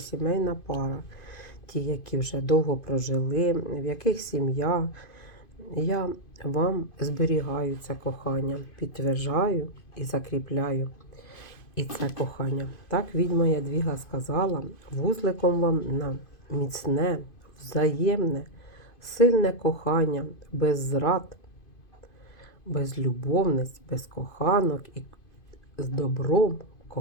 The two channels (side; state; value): right; late; 2.5 ms